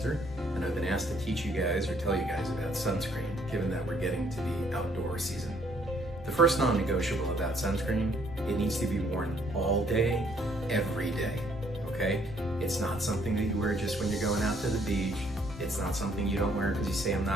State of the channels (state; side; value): normal; both; correlation 0.65